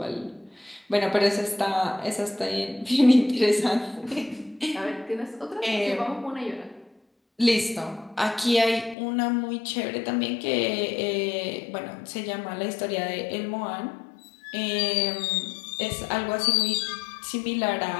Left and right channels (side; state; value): right; drops out; at 9.0 s